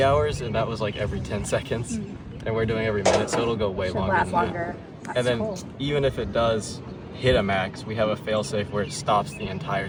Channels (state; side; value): identical; both; correlation 1.00